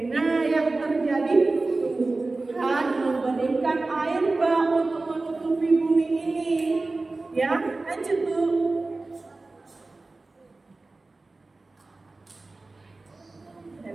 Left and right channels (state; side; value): quieter; left; 3.4 dB